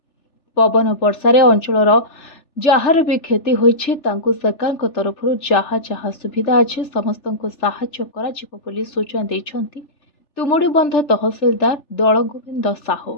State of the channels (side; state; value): right; late; 3.4 ms